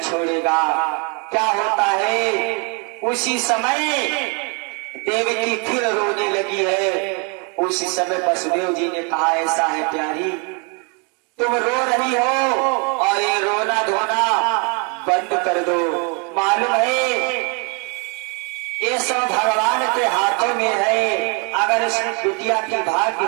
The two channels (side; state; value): left; quieter; 35.0 dB